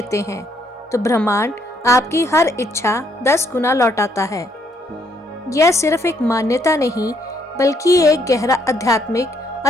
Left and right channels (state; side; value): normal; both; correlation 0.70